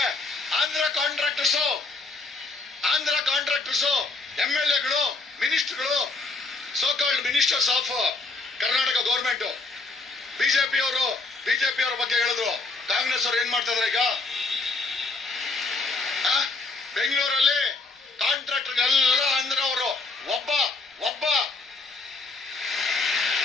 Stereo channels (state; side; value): quieter; right; 3.5 dB